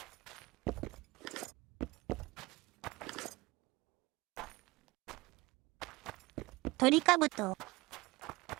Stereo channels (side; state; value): left; quieter; 21.8 dB